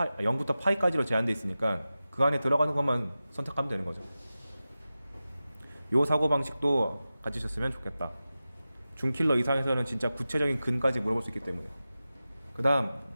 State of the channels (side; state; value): both; inverted; correlation -0.94